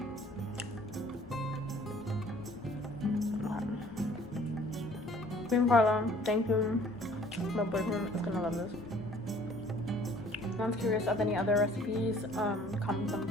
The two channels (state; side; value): normal; both; correlation 0.55